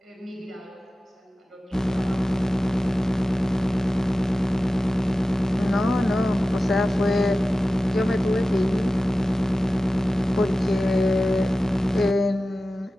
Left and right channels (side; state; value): both; normal; correlation 0.95